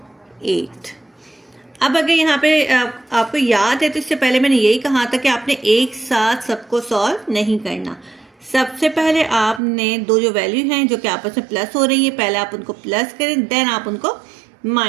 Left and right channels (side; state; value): left; drops out; at 9.6 s